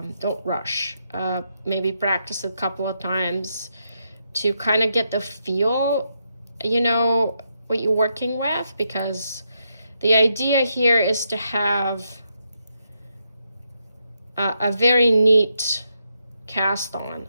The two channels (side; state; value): both; inverted; correlation -0.81